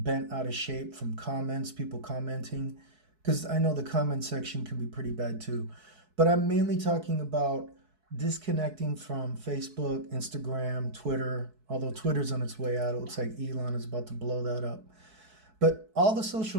out of shape from comments, people commenting, because I know the comment section can be pretty bad too. But I'm mainly talking about disconnecting from Facebook, Instagram, Twitter, although Twitter's on its way out. It looks like Elon is about to blow that up. But all the social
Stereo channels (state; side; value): late; left; 4.6 ms